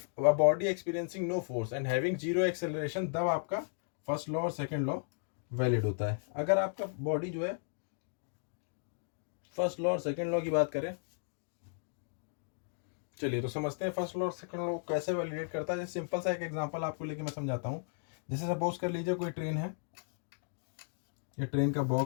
a body experiencing no force and having zero acceleration, तब आपका फर्स्ट लॉ और सेकेंड लॉ वैलिड होता है। अगर आपका बॉडी जो है, फर्स्ट लॉ और सेकेंड लॉ की बात करें, चलिए तो समझते हैं फर्स्ट लॉ और सेकेंड लॉ कैसे वैलिडेट करता है। जैसे सिंपल सा एक एग्जांपल आपको लेके मैं समझाता हूँ। जैसे सपोज कर लीजिए कोई ट्रेन है, ये ट्रेन का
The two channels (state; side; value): silent; right; digital silence